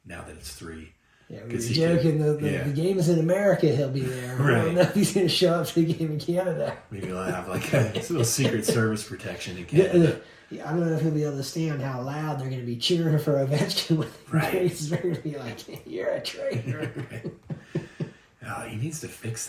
now that it's 3. Yeah, we were joking. The game is in America. He'll be there. Right. I don't know if he's going to show up to the game in Canada. Maybe he'll have like a little Secret Service protection in Canada. I don't know if he'll be able to stand how loud they're going to be cheering for Ovechkin when they're going to be like, "You're a traitor." Oh, he needs to fix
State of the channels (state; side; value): identical; both; correlation 1.00